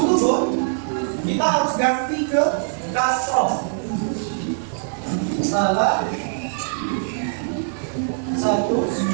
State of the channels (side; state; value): left; silent; digital silence